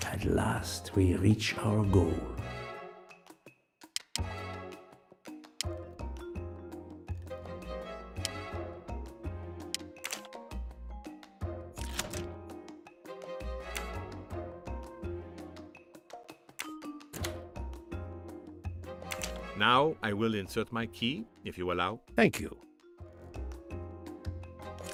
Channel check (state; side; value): identical; both; correlation 1.00